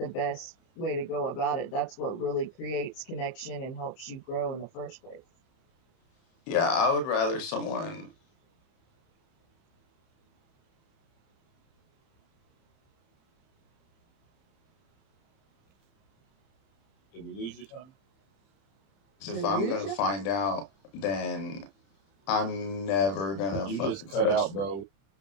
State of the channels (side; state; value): right; late; 30 ms